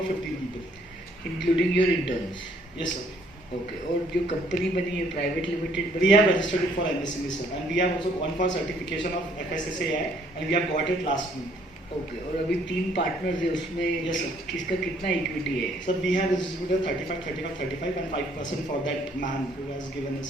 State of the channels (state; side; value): normal; both; correlation 0.64